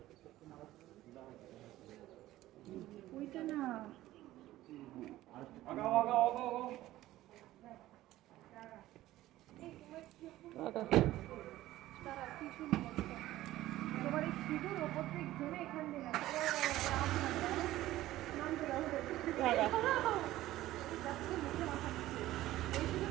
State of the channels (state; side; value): quieter; left; 15.5 dB